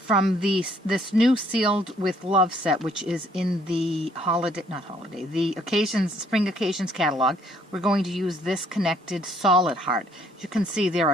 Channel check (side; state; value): both; normal; correlation 0.64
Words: this new Sealed with Love set, which is in the the Spring Occasions catalog, we're going to use this connected solid heart. As you can see, there